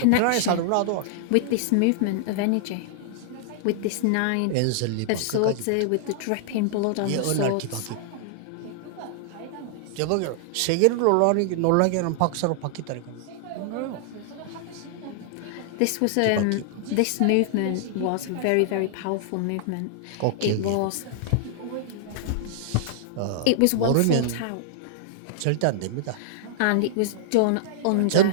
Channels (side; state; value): both; different; correlation -0.01